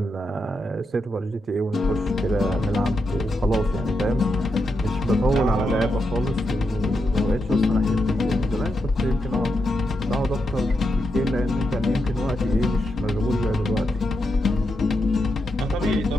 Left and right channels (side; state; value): both; normal; correlation 0.85